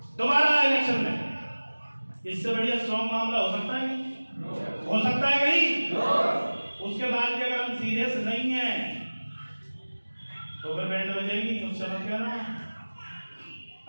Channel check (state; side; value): inverted; both; correlation -1.00